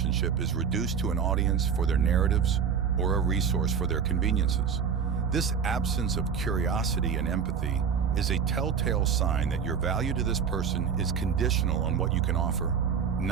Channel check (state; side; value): quieter; left; 6.9 dB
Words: is reduced to an audience for their narratives or a resource for their conveniences. This absence of curiosity and empathy is a telltale sign that your value to this person is conditional on what you can offer,